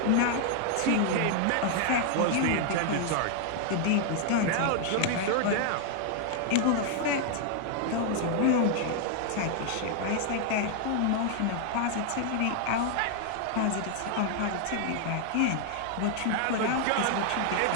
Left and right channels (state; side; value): different; both; correlation 0.00